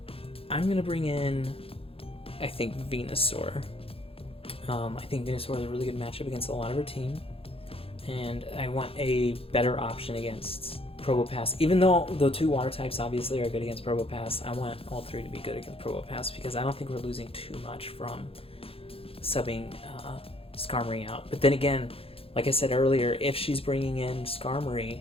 I'm going to bring in, I think, Venusaur. I think Venusaur is a really good matchup against a lot of her team. And I want a better option against Probopass. Even though the 2 water types obviously are good against Probopass, I want all 3 to be good against Probopass because I don't think we're losing too much from subbing Skarmory out. But then again, like I said earlier, if she's bringing in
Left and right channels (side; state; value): right; late; 0.27 ms